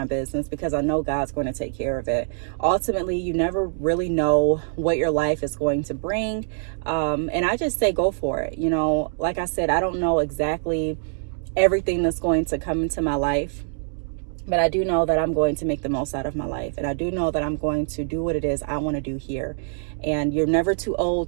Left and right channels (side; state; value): left; silent; digital silence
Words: business, because I know God's going to take care of it. Ultimately, you never really know what your life is going to bring. And I just say, go for it. You know, like I said, I don't know exactly everything that's going to come into my life, but I do know that I'm going to make the most out of my life. And I do know that I'm going to do what it is I want to do here. And you're never too old